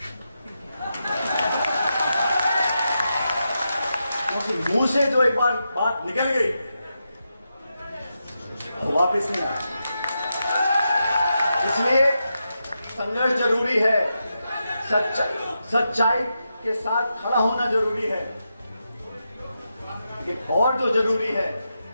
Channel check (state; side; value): inverted; both; correlation -0.87